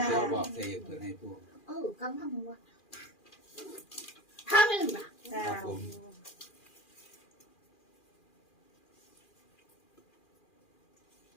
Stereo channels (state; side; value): late; right; 2.4 ms